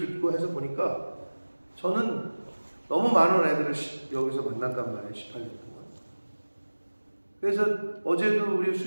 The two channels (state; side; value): inverted; both; correlation -1.00